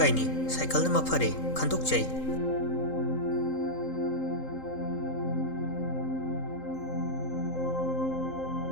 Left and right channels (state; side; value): late; right; 3.8 ms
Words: ꯁꯥꯏꯀꯜꯅ ꯃꯐꯔꯦ ꯈꯟꯗꯣꯛꯆꯩ꯫